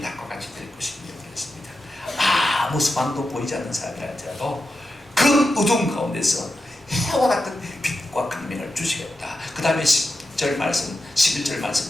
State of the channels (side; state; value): both; normal; correlation 0.90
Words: 같이 될 것이며 그랬습니다. 아무 소망도 보이지 않는 사람이라 할지라도 그 어둠 가운데서 해와 같은 빛과 광명을 주시겠다. 그 다음에 10절 말씀, 11절